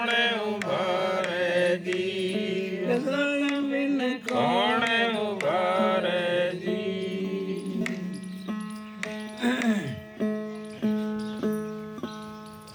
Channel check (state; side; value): identical; both; correlation 1.00